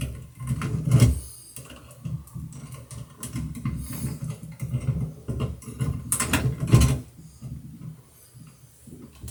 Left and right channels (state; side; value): identical; both; correlation 1.00